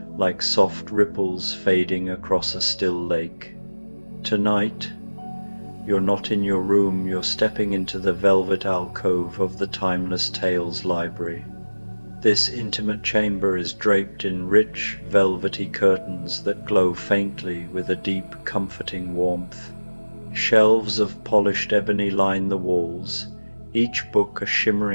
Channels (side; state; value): both; inverted; correlation -1.00